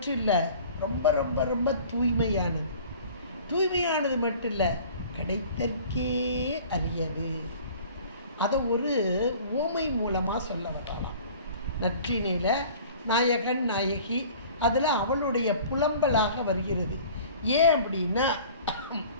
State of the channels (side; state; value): both; inverted; correlation -0.46